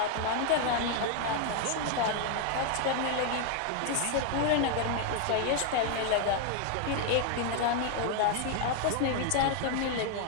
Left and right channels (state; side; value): different; both; correlation 0.00